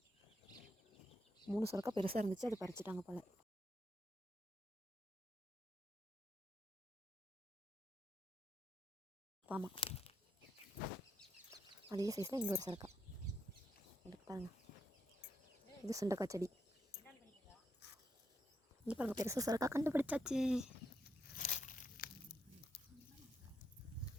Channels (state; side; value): normal; both; correlation 0.80